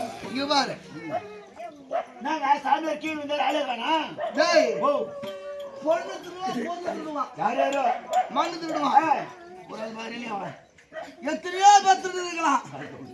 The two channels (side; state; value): both; identical; correlation 1.00